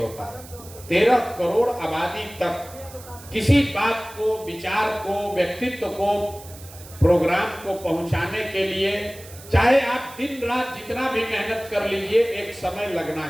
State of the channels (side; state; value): right; noise; hiss, 18 dB below the sound